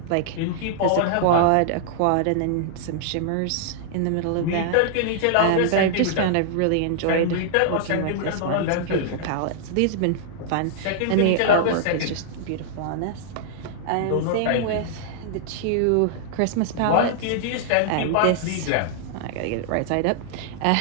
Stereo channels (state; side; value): different; both; correlation -0.01